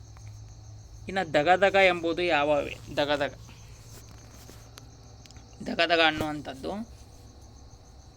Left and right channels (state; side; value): identical; both; correlation 1.00